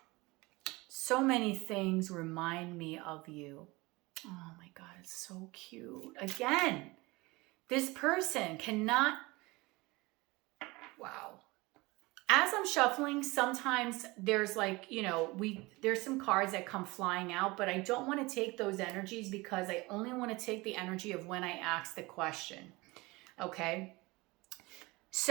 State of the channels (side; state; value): left; quieter; 22.9 dB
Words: So many things remind me of you. Oh my God, it's so cute. Again, this person cannot, wow. As I'm shuffling, sometimes there's there's some cards that come flying out, but I don't want to take those energies because I only want to take the energy of when I ask the question. Okay,